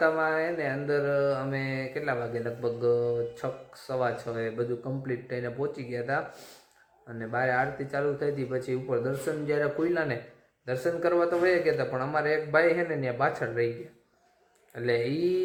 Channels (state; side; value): identical; both; correlation 1.00